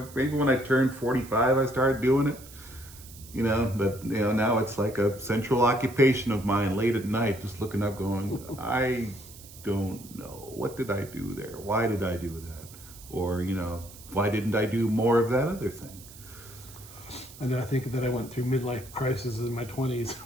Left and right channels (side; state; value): right; noise; hiss, 19 dB below the sound